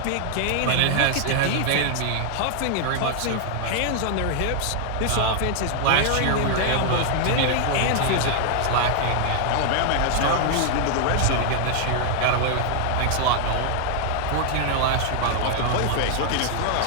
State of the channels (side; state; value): both; different; correlation 0.00